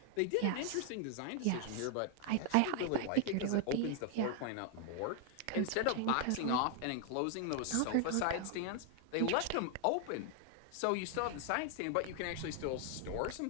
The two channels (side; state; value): both; different; correlation 0.00